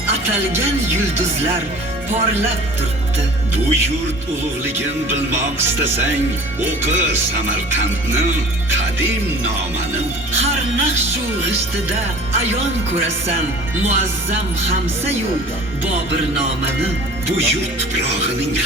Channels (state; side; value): normal; both; correlation 0.44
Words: atalgan yulduzlar porlab turibdi. Bu yurt ulug'ligin bilmoq istasang, o'qi Samarqandni qadim nomani. Har naqshu g'ishtida ayon ko'rasan muazzam Hamsayu Bobir nomani. Bu yurt tuprog'ining